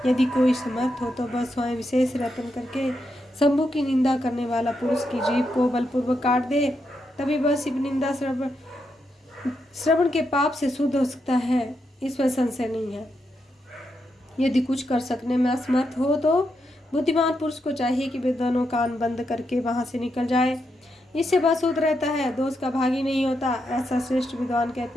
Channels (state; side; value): normal; both; correlation 0.83